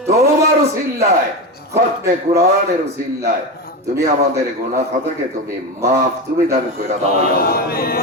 তওবার উসিলায় খতমে কোরআনের উসিলায় তুমি আমাদের গুনাহ খাতাকে তুমি maaf তুমি দান করে দাও ইয়া আল্লাহ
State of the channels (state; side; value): normal; both; correlation 0.18